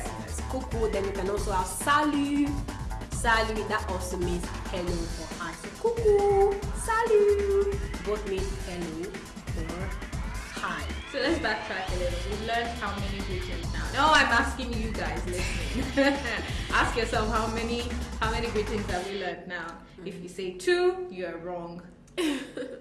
Yes. Cuckoo. Then you can also have salut. Salut. That also means hello or hi. So cuckoo, salut. Both mean hello or hi. So let's backtrack a little. We've learned how many greetings now. No, I'm asking you guys listening. Ask yourself how many greetings have we learned now? If you say 2, you're wrong.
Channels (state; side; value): identical; both; correlation 1.00